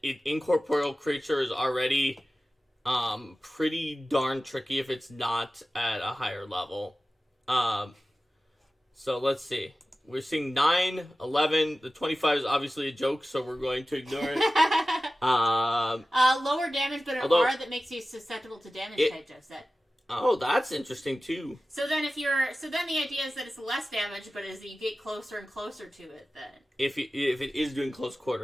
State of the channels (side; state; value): both; normal; correlation 0.95